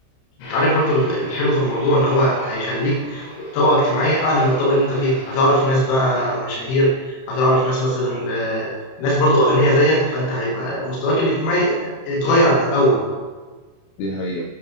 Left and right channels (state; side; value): late; right; 30 ms